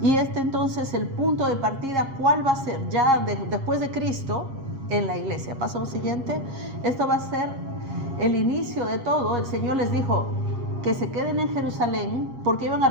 Y entonces, el punto de partida, ¿cuál va a ser? Ya después de Cristo, en la iglesia. Paso al siguiente. Esto va a ser el inicio de todo. El Señor les dijo que se queden en Jerusalén porque iban a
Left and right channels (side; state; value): left; late; 7.4 ms